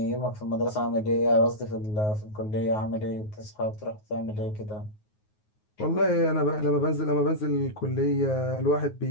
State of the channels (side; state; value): right; late; 9.4 ms